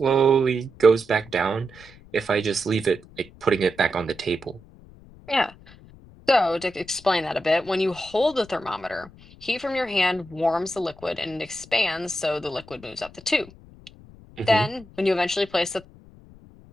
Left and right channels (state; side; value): noise; left; rumble, 22 dB below the sound